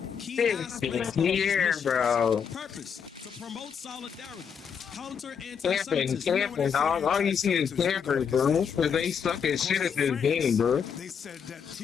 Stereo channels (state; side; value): quieter; right; 7.0 dB